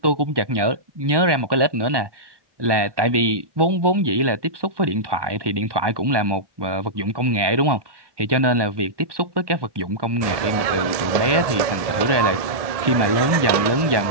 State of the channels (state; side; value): late; left; 1.1 ms